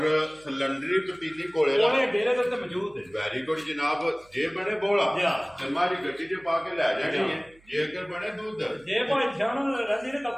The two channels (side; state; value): right; noise; hum, 29 dB below the sound